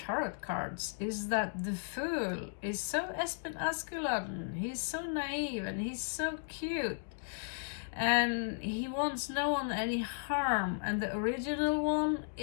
cards is that the Fool is so Espen Askeladden. He's so naive and he's so cute. And he wants no one any harm. And the original one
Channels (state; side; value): silent; right; digital silence